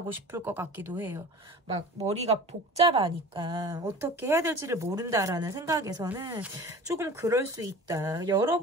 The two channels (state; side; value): normal; both; correlation 0.39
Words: 싶을 것 같기도 해요. 막 머리가 복잡하니까 어떻게 해야 될지를 모른다라는 생각에서는 조금 그럴 수 있다.